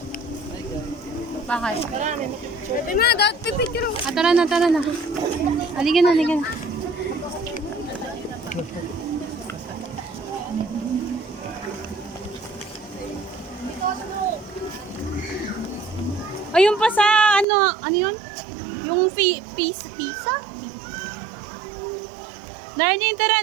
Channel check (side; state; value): left; drops out; at 17.4 s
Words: Bakit? Pwede na, dati pipicture. Tara na. Halika na. Ayun pa sa ano yun? Yung pizza? Darlene,